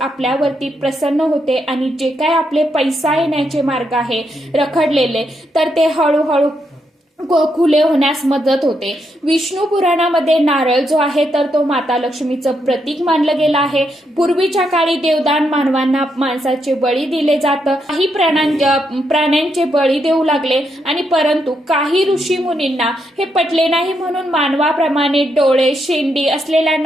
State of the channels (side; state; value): both; normal; correlation 0.80